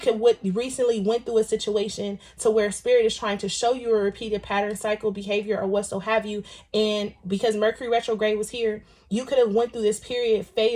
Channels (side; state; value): both; identical; correlation 1.00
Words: recently went through a situation to where Spirit is trying to show you a repeated pattern, cycle, behavior, or what so have you. And because Mercury retrograde was here, you could have went through this period,